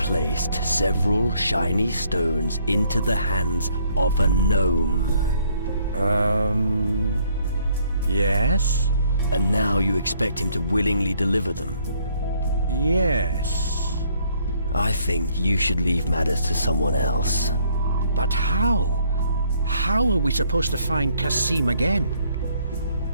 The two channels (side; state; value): both; inverted; correlation -0.66